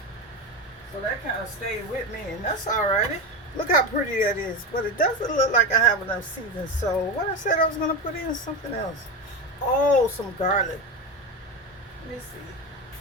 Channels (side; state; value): both; normal; correlation 0.18